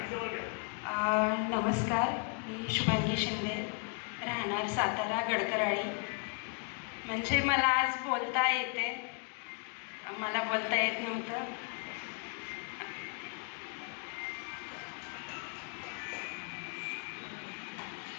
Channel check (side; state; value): right; quieter; 37.6 dB